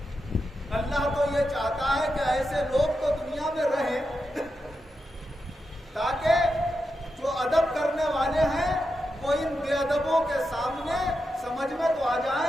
اللہ تو یہ چاہتا ہے کہ ایسے لوگ تو دنیا میں رہیں تاکہ جو ادب کرنے والے ہیں وہ ان بے ادبوں کے سامنے سمجھ میں تو آ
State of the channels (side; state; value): both; normal; correlation 0.88